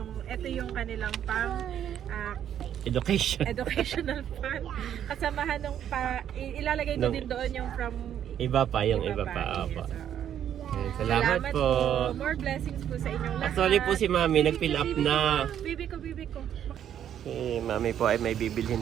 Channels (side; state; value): left; quieter; 9.9 dB